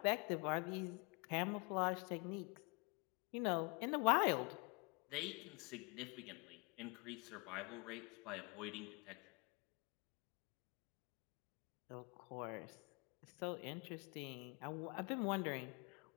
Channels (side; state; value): right; quieter; 31.4 dB